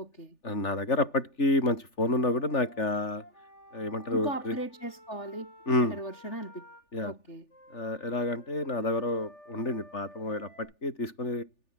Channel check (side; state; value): right; late; 3.4 ms